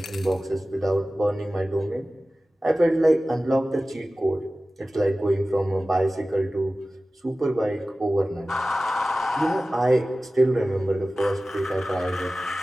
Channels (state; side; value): normal; both; correlation 0.96